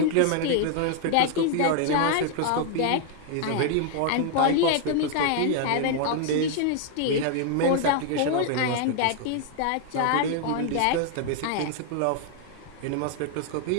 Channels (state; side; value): different; both; correlation 0.00